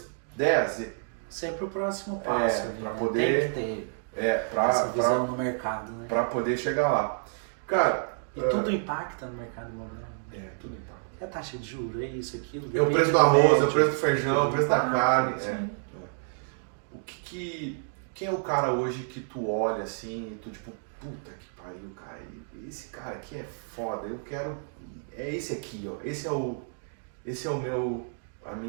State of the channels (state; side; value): silent; left; digital silence